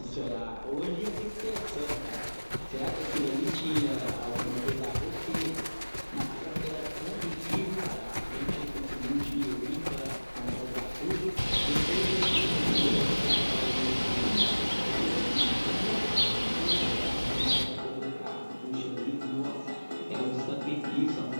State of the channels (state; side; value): inverted; both; correlation -1.00